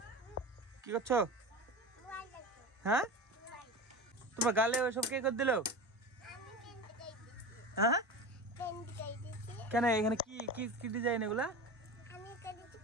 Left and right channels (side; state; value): both; normal; correlation 0.28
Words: কি করছো? হ্যাঁ, তোমার গালে ওইসব কে করে দিল? হ্যাঁ, কেন এখানে কি কি কি ডিজাইন এগুলা?